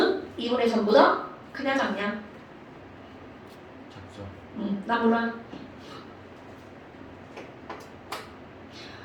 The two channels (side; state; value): both; identical; correlation 1.00